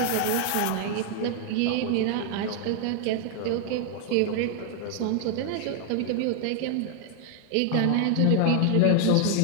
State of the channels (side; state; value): both; different; correlation 0.00